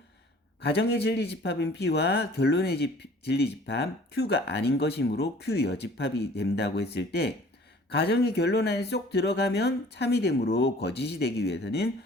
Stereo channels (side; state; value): both; normal; correlation 0.51